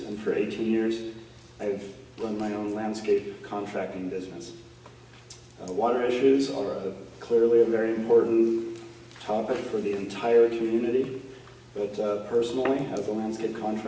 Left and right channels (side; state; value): both; identical; correlation 1.00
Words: and for 18 years, I've run my own landscape contracting business. Water issues are clearly a very important topic for the entire community, but personally, as a landscape